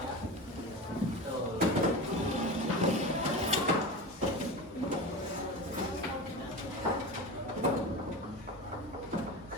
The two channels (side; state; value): both; normal; correlation 0.27